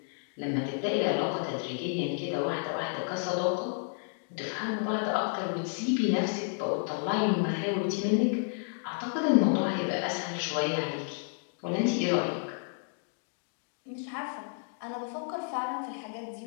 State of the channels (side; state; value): right; silent; 57 dB below the other